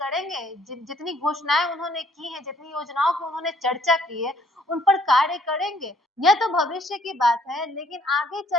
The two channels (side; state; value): both; normal; correlation 0.63